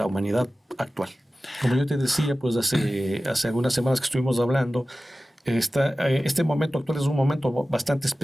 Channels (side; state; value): both; normal; correlation 0.96